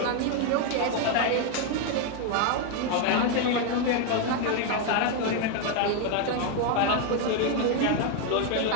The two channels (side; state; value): both; different; correlation 0.01